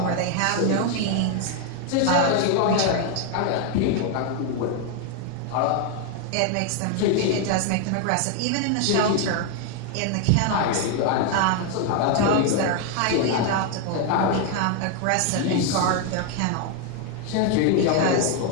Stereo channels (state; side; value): different; both; correlation 0.01